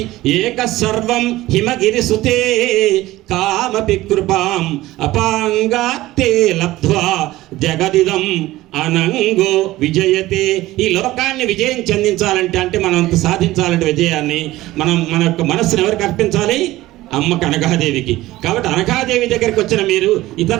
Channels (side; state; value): left; quieter; 17.1 dB